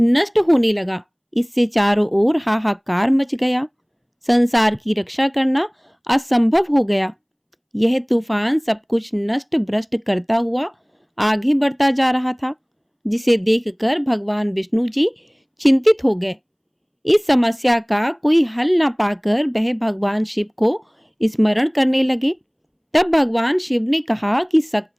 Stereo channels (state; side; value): identical; both; correlation 1.00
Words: होने लगा। इससे चारों ओर हाहाकार मच गया। संसार की रक्षा करना असंभव हो गया। यह तूफान सब कुछ नष्ट भ्रष्ट करता हुआ आगे बढ़ता जा रहा था, जिसे देखकर भगवान विष्णु जी चिंतित हो गए। इस समस्या का कोई हल न पाकर वह भगवान शिव को स्मरण करने लगे। तब भगवान शिव ने कहा कि